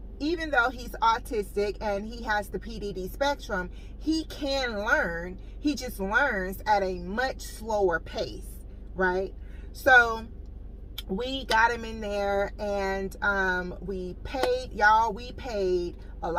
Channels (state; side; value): identical; both; correlation 1.00